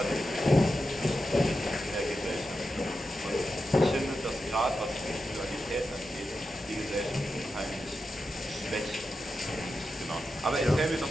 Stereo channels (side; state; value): both; normal; correlation 0.90